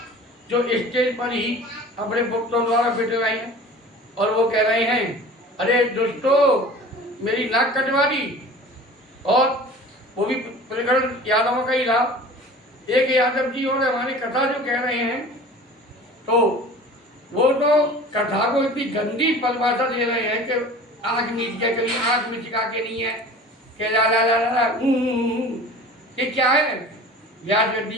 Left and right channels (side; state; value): both; normal; correlation 0.41